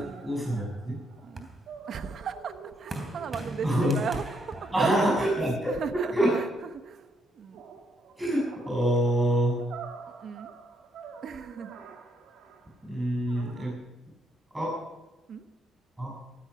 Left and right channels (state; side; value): normal; both; correlation 0.75